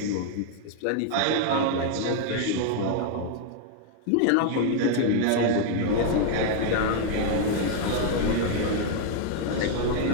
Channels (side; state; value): both; different; correlation 0.00